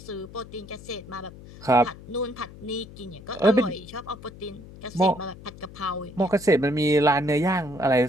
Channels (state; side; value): noise; left; hum, 17 dB below the sound